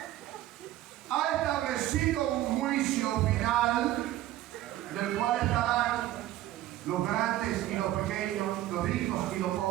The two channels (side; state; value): left; quieter; 14.2 dB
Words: ha establecido un juicio final del cual estarán los grandes y los pequeños, los ricos y los